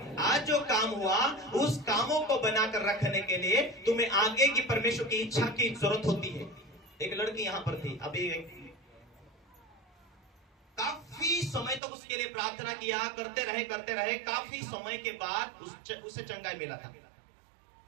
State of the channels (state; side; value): drops out; left; at 11.8 s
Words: आज जो काम हुआ, उस कामों को बनाकर रखने के लिए तुम्हें आगे की परमेश्वर की इच्छा की जरूरत होती है। एक लड़की यहां पर थी, अभी काफी समय तक उसके लिए प्रार्थना किया, करते रहे। काफी समय के बाद उसे चंगाई मिला था।